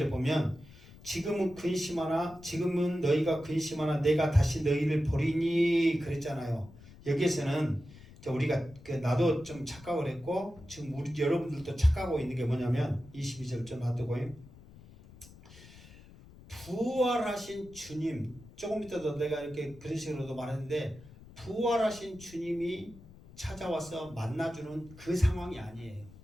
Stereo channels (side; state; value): left; noise; rumble, 20 dB below the sound